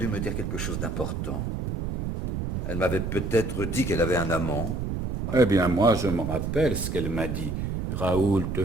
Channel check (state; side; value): noise; right; rumble, 3 dB below the sound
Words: me dire quelque chose d'important. Elle m'avait peut-être dit qu'elle avait un amant. Eh bien, moi, je me rappelle ce qu'elle m'a dit. Raoul, te